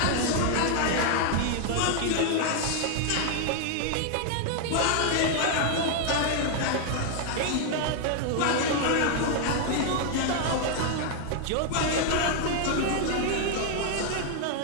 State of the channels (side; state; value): both; different; correlation 0.00